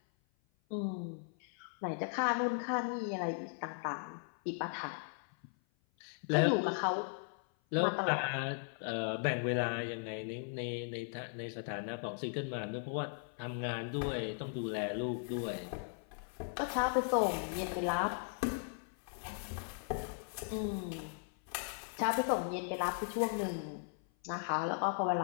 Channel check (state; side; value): silent; right; 53 dB below the other